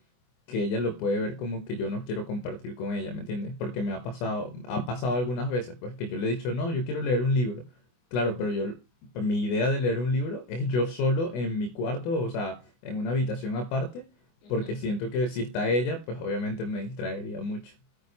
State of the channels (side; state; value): right; late; 24 ms